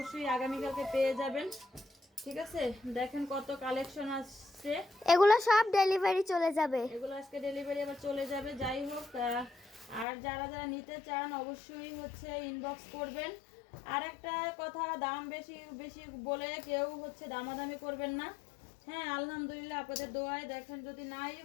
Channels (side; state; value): right; drops out; at 10.1 s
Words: আগামীকালকে পেয়ে যাবেন। ঠিক আছে, দেখেন কত কালেকশন আসছে। এগুলো সব ডেলিভারি চলে যাবে। এগুলো আজকে ডেলিভারি আবার চলে যাবে। যাই হোক, আর যারা যারা নিতে চান অবশ্যই হচ্ছে ইনবক্স করবেন। আর একটা কথা, দাম বেশি বেশি বলে কেউ হচ্ছে দামাদামি করবেন না। হ্যাঁ, আলহামদুলিল্লাহ আপনাদের দোয়ায় দেখেন, যদি নাই